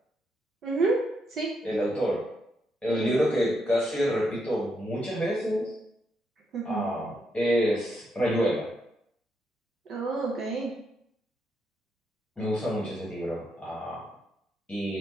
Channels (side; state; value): both; normal; correlation 0.80